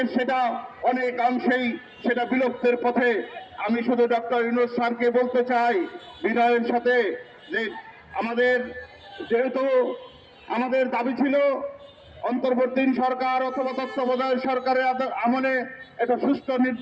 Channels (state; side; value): identical; both; correlation 1.00